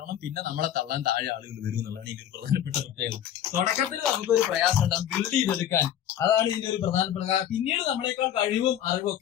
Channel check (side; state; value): right; quieter; 10.6 dB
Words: പിന്നെ നമ്മളെ തള്ളാൻ താഴെ ആളുകൾ വരും എന്നുള്ളതാണ് ഇതിന്റെ ഒരു പ്രധാനപ്പെട്ട പ്രത്യേകത. തുടക്കത്തിൽ നമുക്കൊരു പ്രയാസം ഉണ്ടാകും ബിൽഡ് ചെയ്തെടുക്കാൻ. അതാണ് ഇതിന്റെ ഒരു പ്രധാനപ്പെട്ട കാരണം. പിന്നീട് നമ്മളെക്കാൾ കഴിവും അറിവും